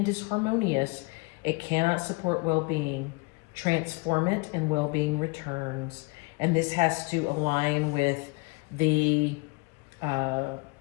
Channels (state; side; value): quieter; right; 28.4 dB